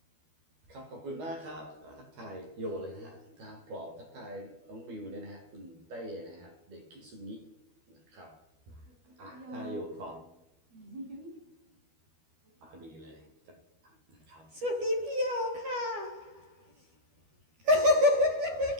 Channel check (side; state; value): left; late; 12 ms